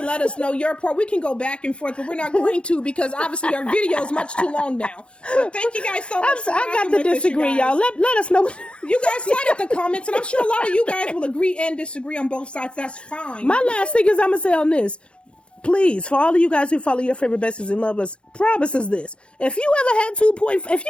let us know your part. We can go back and forth, but we're not going to because obviously our video is much too long now. But thank you guys so much. I got to disagree, y'all. Let us know. You guys light up the comments, and I'm sure a lot of you guys will agree and disagree on both sides. That's fine. My last thing is I'm going to say on this. Please, for all of you guys who follow your favorite besties and love us, promises this. If you ever had if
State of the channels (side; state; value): right; late; 0.057 ms